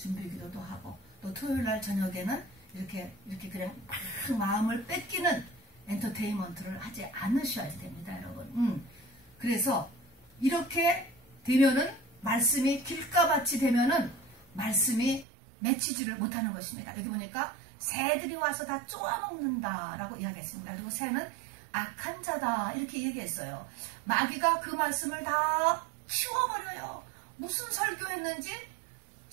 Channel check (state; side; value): drops out; left; at 15.2 s